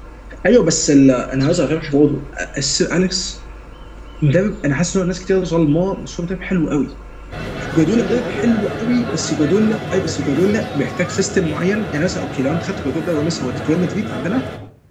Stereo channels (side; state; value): both; identical; correlation 1.00